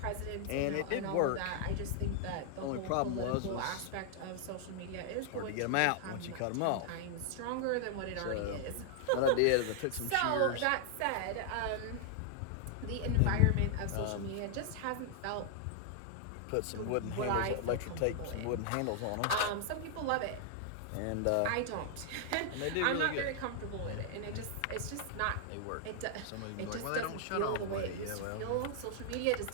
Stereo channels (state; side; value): different; both; correlation 0.00